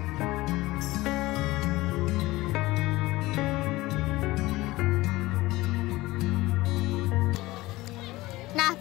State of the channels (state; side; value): quieter; right; 19.2 dB